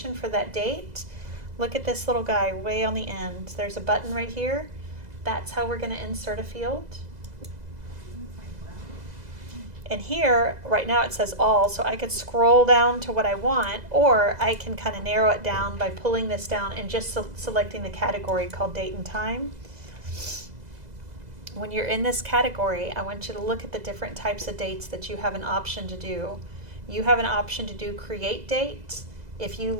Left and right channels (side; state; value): left; late; 2.0 ms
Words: for that date, look at this little guy way on the end. There's a button right here. That's how we're going to insert a field. And here, right now it says all, so I could scroll down to what I want, or I can kind of narrow it down by pulling this down and just selecting the category called date and time. When you're in this category, I want you to look at the different types of dates that you have an option to do. You have an option to do create date. If you